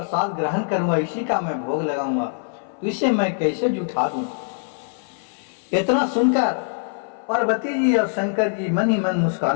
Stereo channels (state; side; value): silent; right; 58 dB below the other